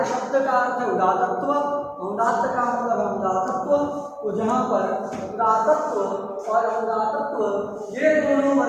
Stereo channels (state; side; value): identical; both; correlation 1.00